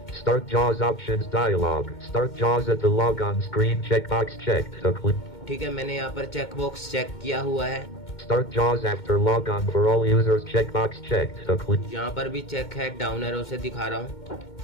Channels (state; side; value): late; right; 2.2 ms